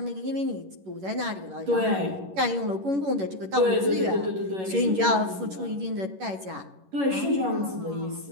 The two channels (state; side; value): late; left; 11 ms